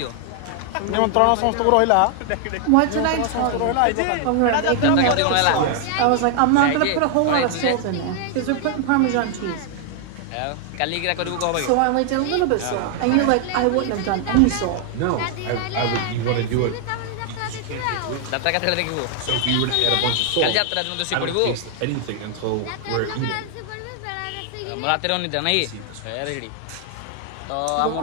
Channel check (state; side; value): different; both; correlation 0.00